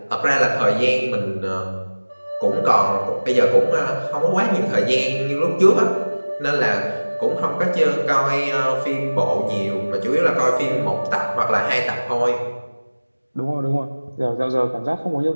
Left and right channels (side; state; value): both; inverted; correlation -1.00